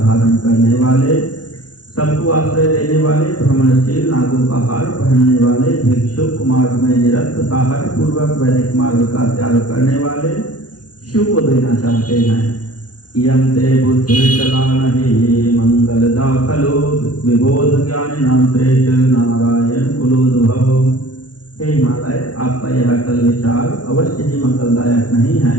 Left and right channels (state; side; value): late; right; 0.69 ms